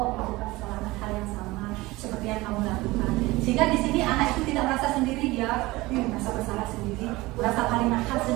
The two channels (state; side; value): quieter; left; 20.5 dB